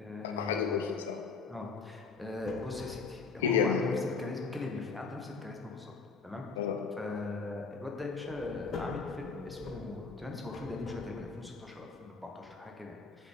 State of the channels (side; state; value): right; quieter; 4.8 dB